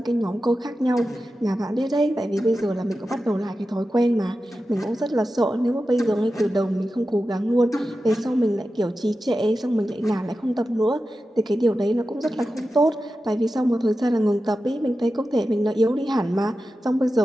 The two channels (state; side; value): normal; both; correlation 0.92